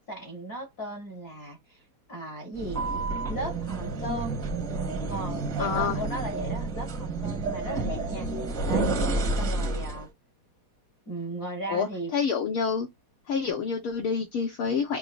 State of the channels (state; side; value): late; right; 4.2 ms